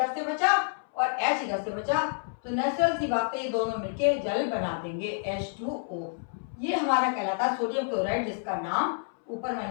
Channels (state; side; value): silent; right; 59 dB below the other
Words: से बचा और H इधर से बचा, तो नेचुरल सी बात है ये दोनों मिलके जल बना देंगे, H2O। ये हमारा कहलाता है सोडियम क्लोराइड, जिसका नाम ऊपर